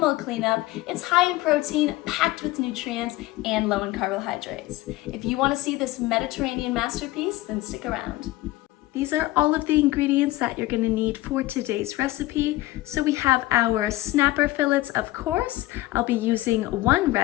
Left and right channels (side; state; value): right; quieter; 17.8 dB